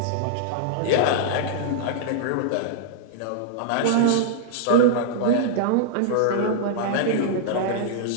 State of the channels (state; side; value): different; both; correlation -0.01